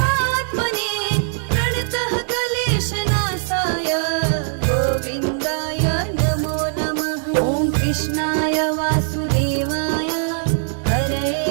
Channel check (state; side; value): silent; left; 64 dB below the other